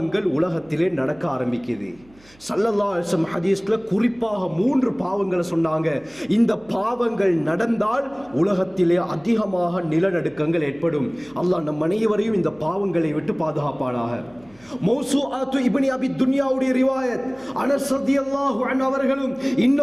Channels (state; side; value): noise; right; hum, 28 dB below the sound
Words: உலகத்திலே நடக்க ஆரம்பிக்குது. ஸல்லல்லாஹு அலைஹி வஸல்லம் ஹதீஸ்ல குறிப்பாக 3 பாவங்களை சொன்னாங்க. இந்த பாவங்கள் நடந்தால் உலகத்திலே அதிகமாக நிலநடுக்கங்கள் ஏற்படும். அல்லாஹ் நம் அனைவரையும் இந்த பாவங்களை விட்டு பாதுகாப்பானாக. மௌசூஆத்து இப்னு அபி துன்யாவுடைய ரிவாயத், அனஸ் ரலியல்லாஹு அன்ஹு அவர்களும்